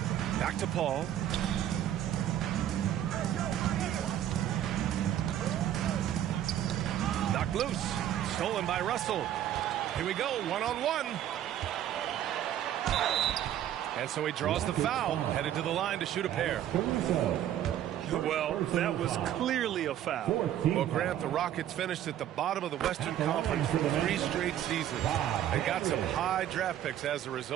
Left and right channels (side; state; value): left; quieter; 11.4 dB